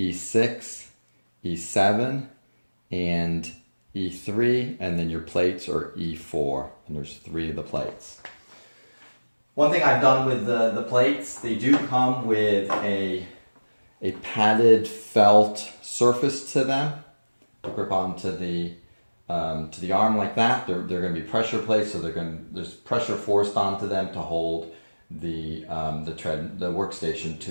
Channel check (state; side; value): inverted; both; correlation -1.00